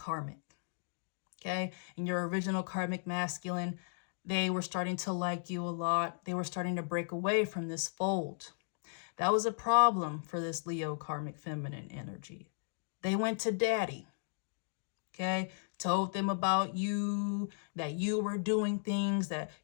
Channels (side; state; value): right; silent; digital silence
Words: Okay, and your original karmic masculine, they were starting to like you a lot. They were starting to break away from this fold. That was a problem for this Leo karmic feminine energy. They went to daddy, okay, told them about you, that you were doing things, that